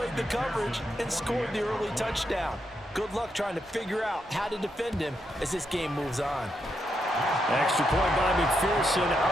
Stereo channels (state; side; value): normal; both; correlation 0.82